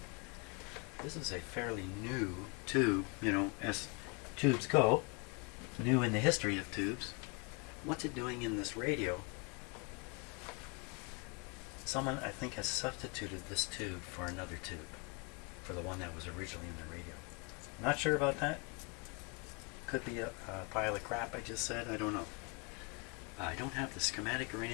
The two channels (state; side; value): quieter; right; 32.4 dB